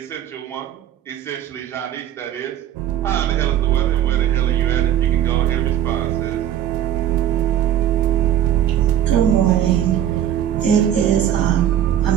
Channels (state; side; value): quieter; left; 10.8 dB